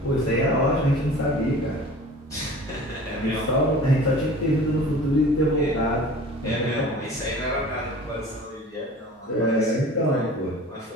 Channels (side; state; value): both; normal; correlation 0.42